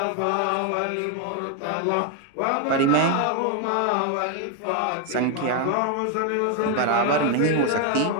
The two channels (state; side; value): different; both; correlation 0.01